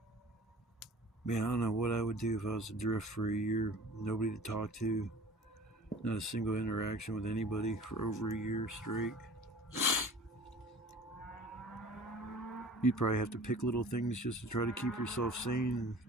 Man, I don't know what I would do if I was adrift for a year. Nobody to talk to. Not a single interaction with anybody for over a year straight. You'd probably have to pick little things just to try to keep yourself sane and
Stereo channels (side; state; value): both; normal; correlation 0.44